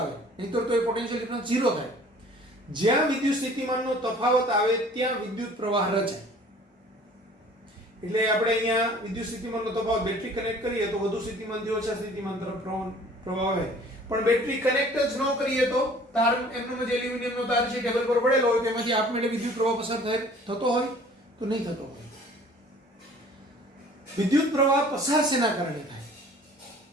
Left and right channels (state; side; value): normal; both; correlation 0.50